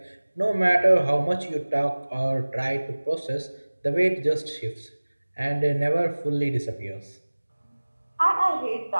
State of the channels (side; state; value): both; inverted; correlation -1.00